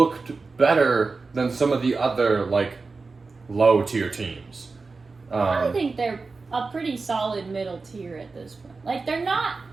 better than some of the other, low-tier teams. I think they're a pretty solid middle tier at this point. They're not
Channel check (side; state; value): left; quieter; 4.1 dB